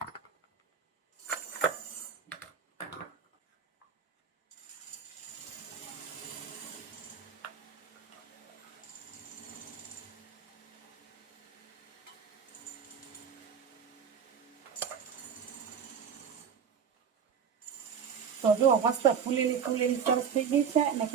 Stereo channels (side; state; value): left; quieter; 7.1 dB